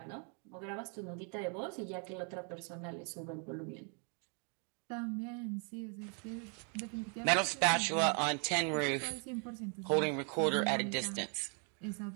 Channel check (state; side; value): quieter; left; 39.3 dB